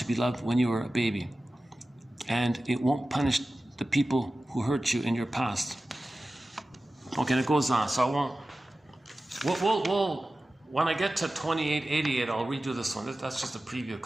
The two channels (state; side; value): normal; both; correlation 0.95